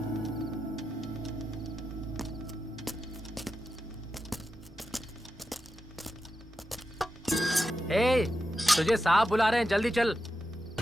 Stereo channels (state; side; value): normal; both; correlation 0.89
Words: ए, तुझे साहब बुला रहे हैं, जल्दी चल।